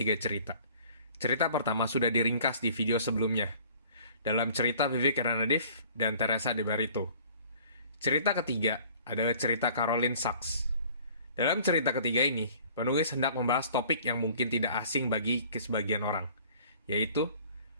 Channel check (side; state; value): both; inverted; correlation -0.51